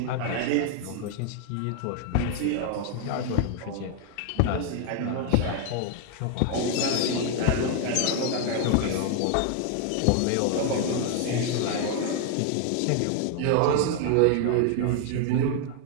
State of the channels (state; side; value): different; both; correlation 0.00